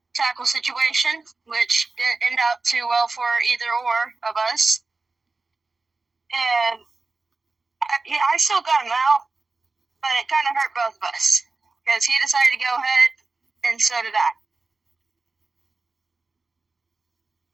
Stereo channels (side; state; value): left; quieter; 3.7 dB